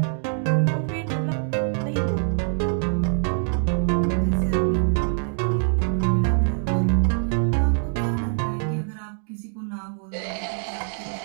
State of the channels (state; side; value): silent; left; digital silence